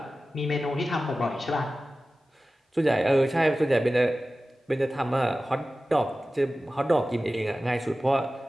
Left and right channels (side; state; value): both; normal; correlation 0.95